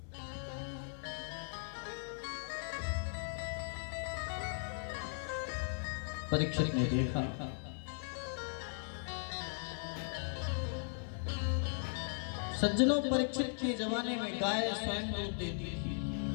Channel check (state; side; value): silent; right; 52 dB below the other